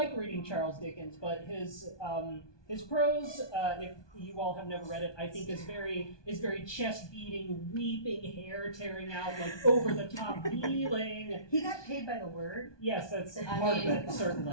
reading Charles Dickens, but his prose, if you all have never read it, I think is very chest beating, weeping, hair tearing out, like over the top feeling. he got paid by the word. Yes, that's part of it,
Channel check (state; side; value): late; right; 1.2 ms